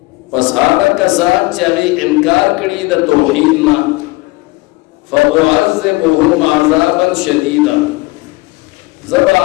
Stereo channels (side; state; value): right; quieter; 22.6 dB